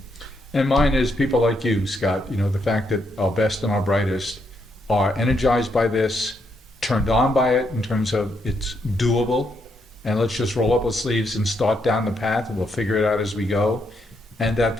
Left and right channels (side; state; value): both; normal; correlation 0.77